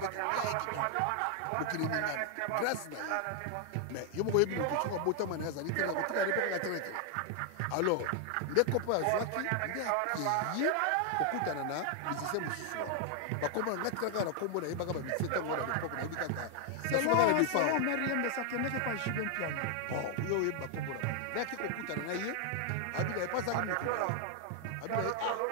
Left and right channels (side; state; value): both; different; correlation 0.00